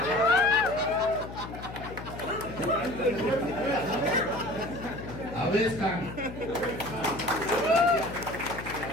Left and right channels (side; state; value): left; noise; hum, 11 dB below the sound